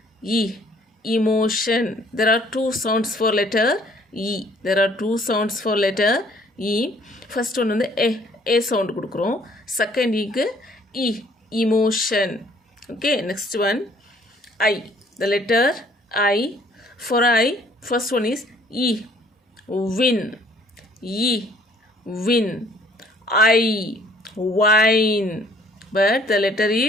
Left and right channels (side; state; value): both; normal; correlation 0.60